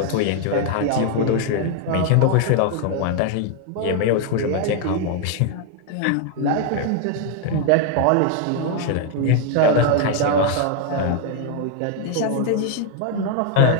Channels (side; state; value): both; different; correlation 0.00